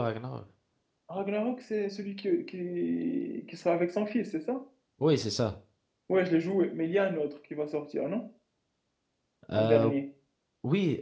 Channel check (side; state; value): both; identical; correlation 1.00